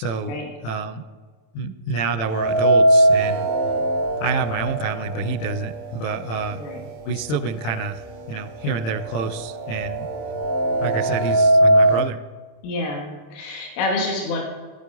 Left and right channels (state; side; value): late; right; 27 ms